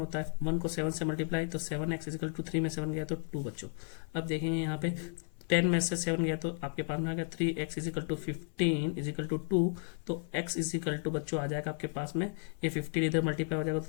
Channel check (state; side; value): silent; right; 55 dB below the other